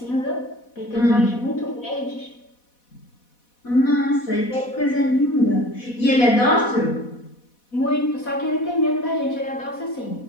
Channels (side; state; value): right; late; 4.1 ms